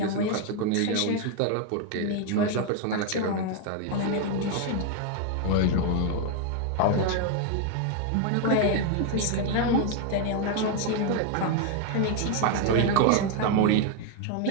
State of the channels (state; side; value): different; both; correlation 0.01